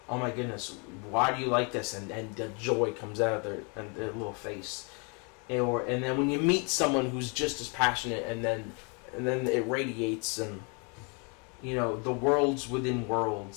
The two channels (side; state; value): right; quieter; 34.4 dB